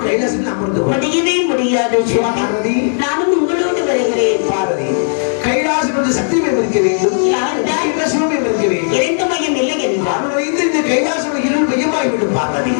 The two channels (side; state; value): right; silent; digital silence